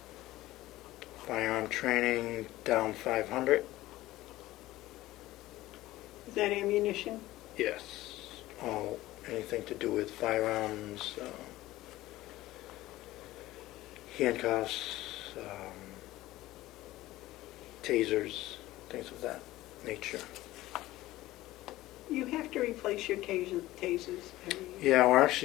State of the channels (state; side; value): quieter; right; 16.8 dB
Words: Firearm training down 500. Is that ammunition? Yes. All anything to do with firearms, handcuffs, tasers, things of that nature. You have to replace your tasers every year. Yeah, we're